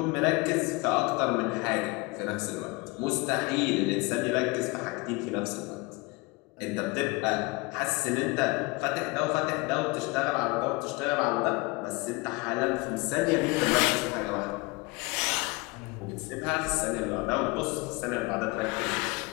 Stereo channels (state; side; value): quieter; right; 25.8 dB